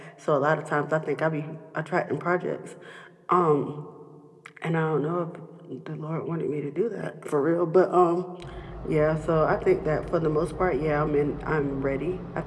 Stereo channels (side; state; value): both; identical; correlation 1.00